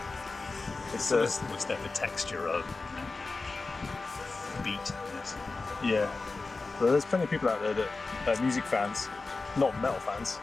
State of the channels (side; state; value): right; quieter; 3.8 dB